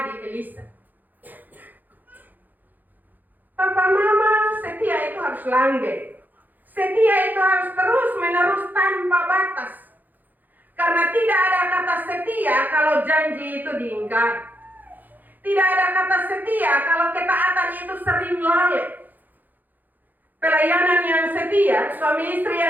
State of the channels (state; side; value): late; left; 0.085 ms